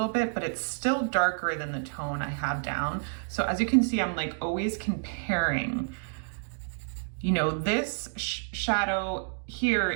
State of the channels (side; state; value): left; silent; digital silence